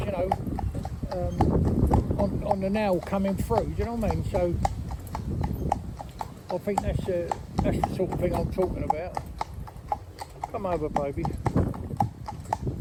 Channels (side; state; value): both; identical; correlation 1.00